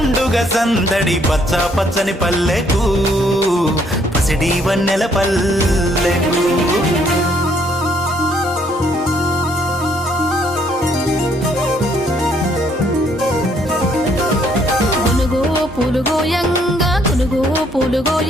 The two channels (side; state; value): both; normal; correlation 0.67